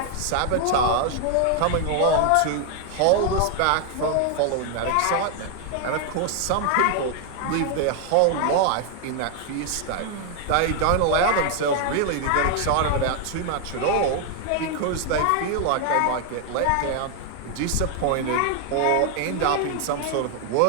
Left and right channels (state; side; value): different; both; correlation 0.00